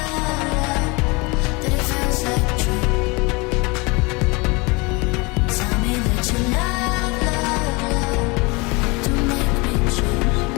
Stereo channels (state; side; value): quieter; right; 26.8 dB